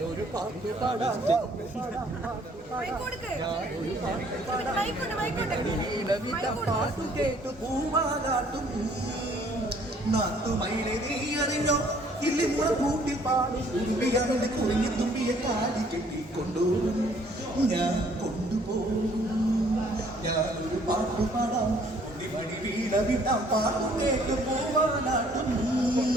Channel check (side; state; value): both; normal; correlation 0.60